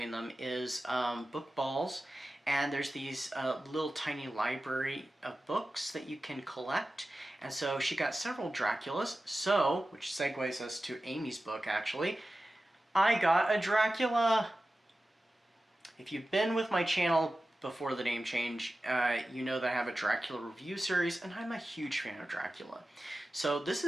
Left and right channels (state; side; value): normal; both; correlation 0.94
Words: them, is book balls. And there's these little tiny library of books that you can collect. And so she got several Draculas, which segues us to Amy's book actually. I got a Dracula! If you've been with my channel before the name change, you know that I have a Dracula review series, and I'm a huge fan of Dracula. So this